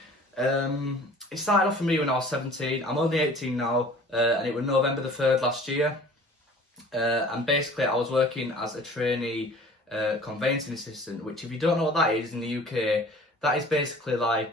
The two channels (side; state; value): both; normal; correlation 0.47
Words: It started off for me when I was 17. I'm only 18 now, and it was November the 3rd last year. And basically I was working as a trainee conveyancing assistant, which if you don't know what that is in the UK, that is basically